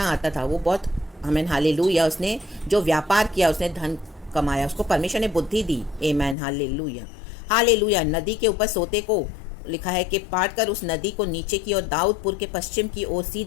आता था, वो बहुत, आमीन, हालेलुया। उसने जो व्यापार किया, उसने धन कमाया, उसको परमेश्वर ने बुद्धि दी, आमीन, हालेलुया, हालेलुया। नदी के ऊपर सोते को लिखा है कि पाट कर उस नदी को नीचे की ओर दाऊदपुर के पश्चिम की ओर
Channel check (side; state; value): right; drops out; at 6.4 s